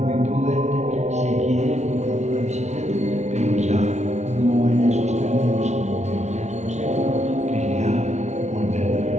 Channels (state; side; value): late; left; 0.33 ms